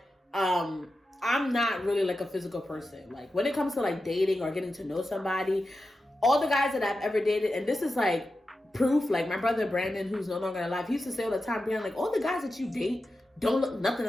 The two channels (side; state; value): both; normal; correlation 0.91